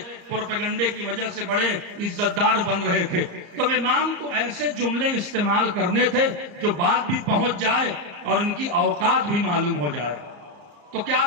پروپیگنڈے کی وجہ سے بڑے عزت دار بن رہے تھے۔ تو امام کو ایسے جملے استعمال کرنے تھے جو بات بھی پہنچ جائے اور ان کی اوقات بھی معلوم ہو جائے۔ تو کیا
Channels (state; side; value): late; left; 34 ms